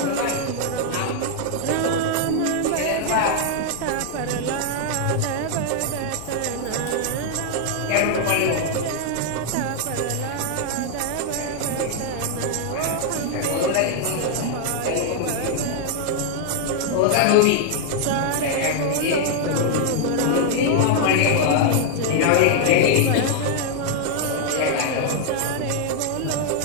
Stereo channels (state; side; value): different; both; correlation 0.00